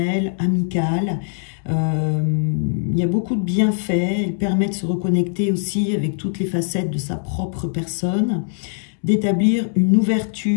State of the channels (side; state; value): right; silent; 65 dB below the other